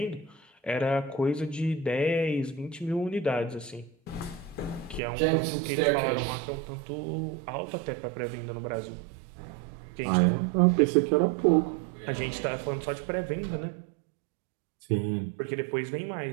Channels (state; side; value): drops out; left; at 5.0 s